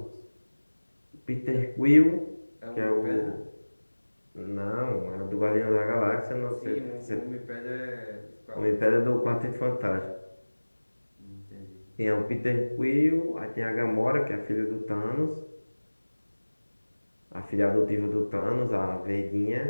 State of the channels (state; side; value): inverted; both; correlation -1.00